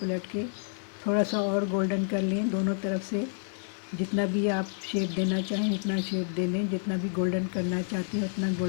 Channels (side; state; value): right; silent; 58 dB below the other